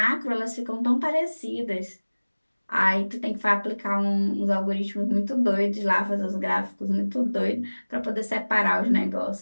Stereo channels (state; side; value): inverted; both; correlation -1.00